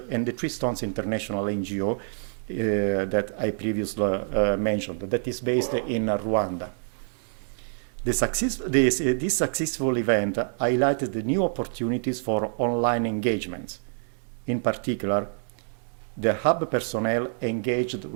International NGO that I previously mentioned, that is based in Rwanda. This successful event highlighted the new opportunities for online engagements. In particular, the hub personnel engaged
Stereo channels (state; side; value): silent; left; digital silence